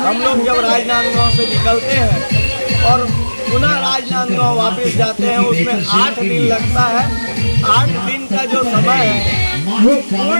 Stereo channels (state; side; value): inverted; both; correlation -1.00